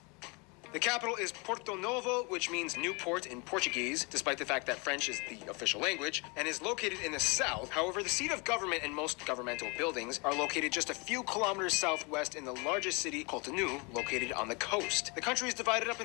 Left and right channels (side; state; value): right; quieter; 30.1 dB